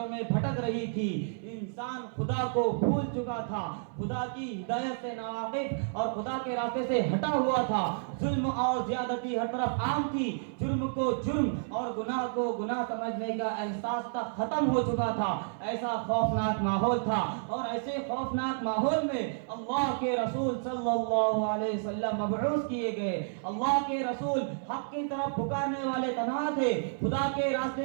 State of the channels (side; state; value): left; silent; 57 dB below the other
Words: میں بھٹک رہی تھی، انسان خدا کو بھول چکا تھا، خدا کی ہدایت سے ناواقف اور خدا کے راستے سے ہٹا ہوا تھا۔ ظلم اور زیادتی ہر طرف عام تھی، جرم کو جرم اور گناہ کو گناہ سمجھنے کا احساس تک ختم ہو چکا تھا۔ ایسا خوفناک ماحول تھا اور ایسے خوفناک ماحول میں اللہ کے رسول صلی اللہ علیہ وسلم مبعوث کیے گئے۔ اللہ کے رسول حق کی طرف پکارنے والے تنہا تھے، خدا کے راستے